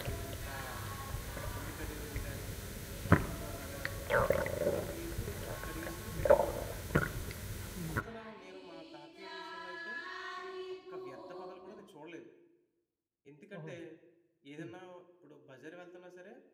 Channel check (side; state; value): both; identical; correlation 1.00